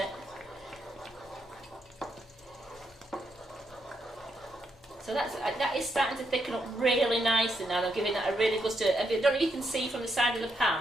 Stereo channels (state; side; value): normal; both; correlation 0.80